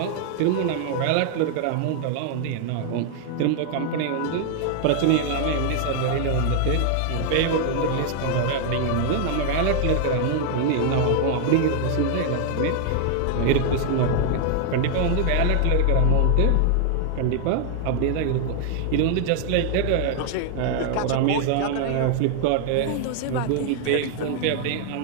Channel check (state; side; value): different; both; correlation 0.00